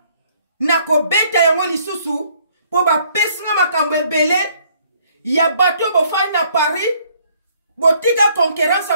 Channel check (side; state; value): both; inverted; correlation -0.64